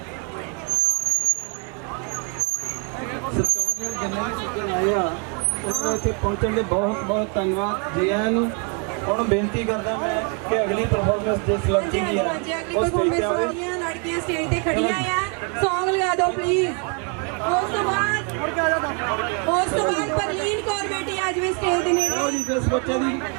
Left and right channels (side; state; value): left; quieter; 37.3 dB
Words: ਇੱਥੇ ਪਹੁੰਚਣ ਦੇ ਬਹੁਤ ਬਹੁਤ ਧੰਨਵਾਦ ਜੀ ਆਇਆਂ ਨੂੰ। ਹੁਣ ਬੇਨਤੀ ਕਰਦਾ ਮੈਂ ਕਿ ਅਗਲੀ ਪਰਫਾਰਮੈਂਸ ਜਿਸ ਲੜਕੀ ਦੀ ਹੈ ਉਹ ਸਟੇਜ ਤੇ ਆਵੇ। ਲੜਕੀਆਂ ਸਟੇਜ ਤੇ ਖੜੀਆਂ ਆ, ਸੌਂਗ ਲਗਾ ਦਿਓ ਪਲੀਜ਼। ਉਸ ਤੋਂ ਬਾਅਦ ਪਰਲੀਨ ਕੌਰ ਬੇਟੀ ਆ ਜਾਵੇ ਸਟੇਜ ਦੇ ਨੇੜੇ। ਲਓ ਜੀ, ਜਿਸ ਬੱਚੇ ਦੀ